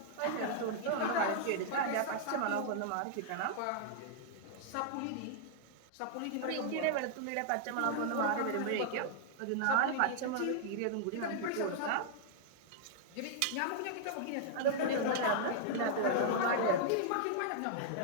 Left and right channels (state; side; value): different; both; correlation -0.01